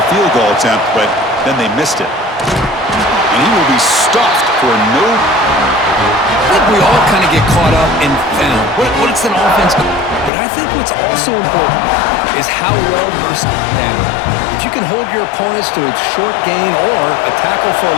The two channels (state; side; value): drops out; right; at 10.3 s